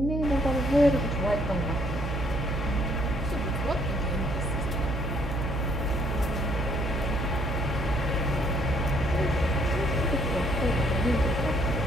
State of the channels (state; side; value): noise; right; hum, 2 dB below the sound